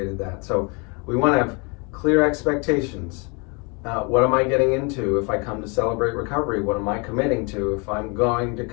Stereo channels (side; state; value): right; quieter; 31.9 dB